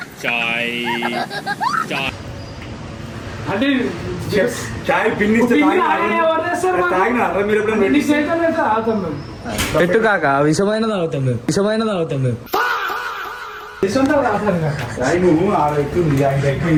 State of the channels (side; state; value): both; identical; correlation 1.00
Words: అంటే చాయ్ పిన్నిస్తే పిన్ని అలానే ఎవరు చేస్తారు మరి? తాగినారా మీరు ఎప్పుడైనా? ఎన్ని సేకలు అయితే ఆగుతాం మేము. పెట్టు కాక విషమైన తాగుతాం మేము తీసుకుంటావు రాసాను కాక. చాయ్ నువ్వు ఆడ ఎక్కుంది, ఆయన